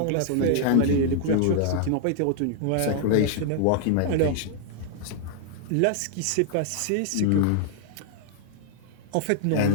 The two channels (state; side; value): different; both; correlation 0.00